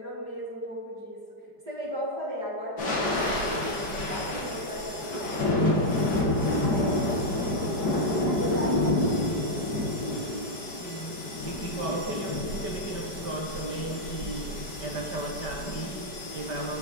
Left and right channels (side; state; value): left; late; 4.6 ms